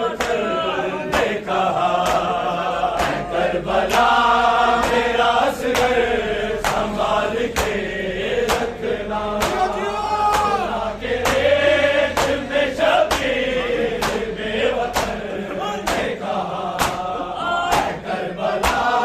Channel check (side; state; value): both; identical; correlation 1.00